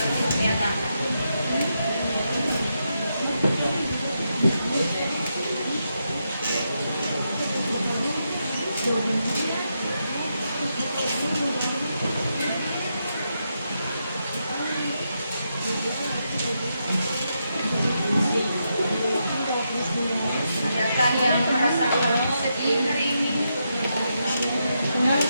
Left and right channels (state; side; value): inverted; both; correlation -0.83